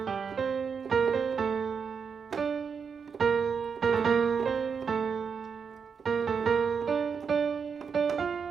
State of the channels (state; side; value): quieter; left; 6.1 dB